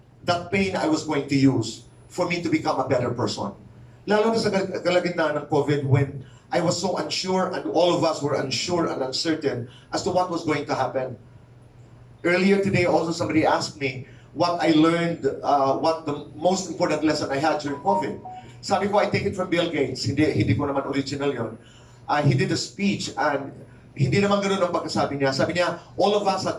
that pain I was going to use for me to become a better person. Lalo na sa kalagitnaan ng COVID when I was so unsure and all of us were unsure and uncertain as to what was going to happen. Earlier today also somebody asked me what I learned, what the most important lesson I had during COVID. Sabi ko, I take it from Bill Gates. Hindi ko naman original yon. He did a speech and hindi naman ganoon ang pagkasabi niya. Sabi niya, all of us had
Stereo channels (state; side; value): identical; both; correlation 1.00